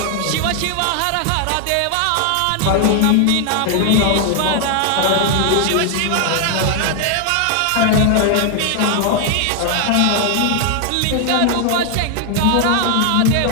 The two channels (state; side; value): different; both; correlation 0.00